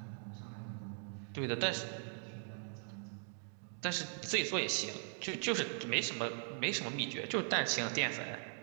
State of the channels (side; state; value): left; silent; 51 dB below the other